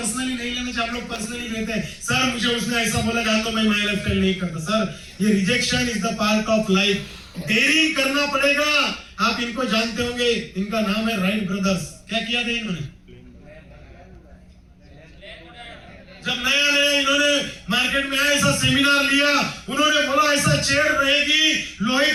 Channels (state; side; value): identical; both; correlation 1.00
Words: नहीं लेना चाहिए। आप लोग पर्सनली लेते हैं, सर मुझे उसने ऐसा बोला, जान तो मैं माय लाइफस्टाइल नहीं करता। सर ये rejection is the part of life, daring करना पड़ेगा। आप इनको जानते होंगे, इनका नाम है राइट ब्रदर्स। क्या किया था इन्होंने? जब नया इन्होंने मार्केट में आया, ऐसा सेमिनार लिया, उन्होंने बोला ऐसा चेयर रहेगी, लोहे